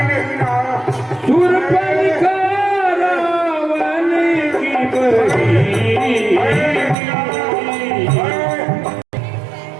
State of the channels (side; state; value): left; drops out; at 7.0 s